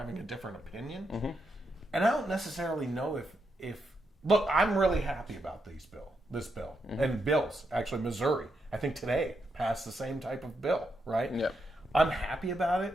a different opinion, and I don't necessarily know if look, I'm really happy about this bill, and bills. Actually, Missouri, I think today passed the same type of bill, right? Yeah. I'm happy about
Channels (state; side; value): normal; both; correlation 0.82